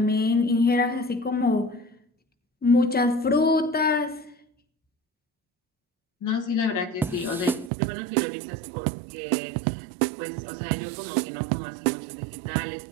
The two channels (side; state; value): left; drops out; at 7.7 s